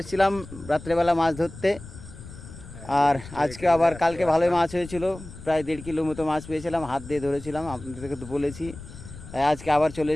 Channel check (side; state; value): left; noise; rumble, 15 dB below the sound